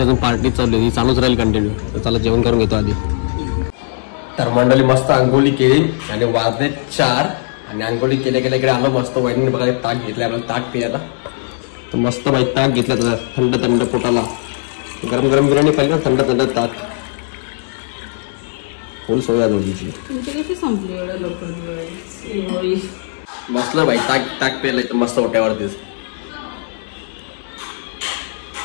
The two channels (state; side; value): silent; right; digital silence